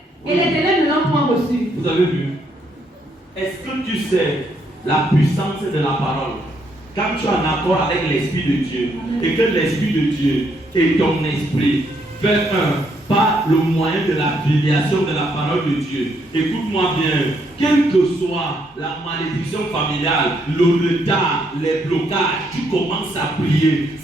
et les ténèbres ne l'ont point reçue. Vous avez vu? Est-ce que tu sais la puissance de la parole? Quand tu es en accord avec l'Esprit de Dieu et que l'Esprit de Dieu et ton esprit fait un par le moyen de la filiation de la parole de Dieu. Écoute-moi bien, quelle que soit la malédiction familiale, le retard, les blocages, tu commences à prier,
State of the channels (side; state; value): both; normal; correlation 0.73